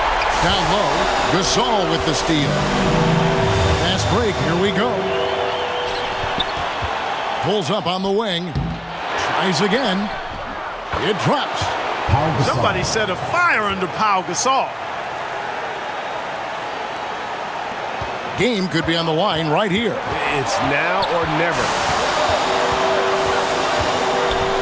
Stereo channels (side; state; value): both; identical; correlation 1.00